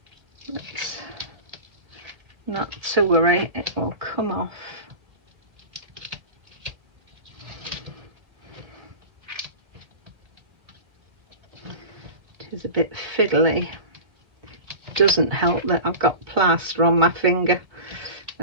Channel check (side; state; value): left; late; 1.9 ms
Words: But not to worry, it will come off. It is a bit fiddly. Doesn't help that I've got plaster on my finger.